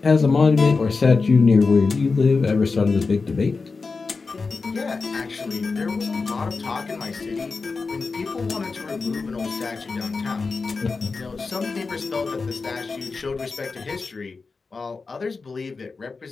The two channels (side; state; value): right; quieter; 4.3 dB